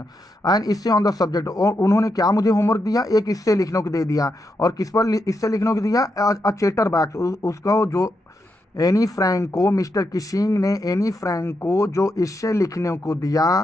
इससे ऑन द सब्जेक्ट, और उन्होंने क्या मुझे होमवर्क दिया, एक इससे लिखने को दे दिया, और किस पर इससे लिखने को दिया, अ चैटर बॉक्स, उसका जो एनी फ्रैंक को, मिस्टर किशिंग ने एनी फ्रैंक को जो इससे लिखने को दिया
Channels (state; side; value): normal; both; correlation 0.84